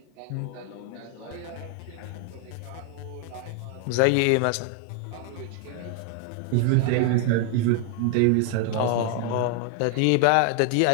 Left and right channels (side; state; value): both; different; correlation 0.00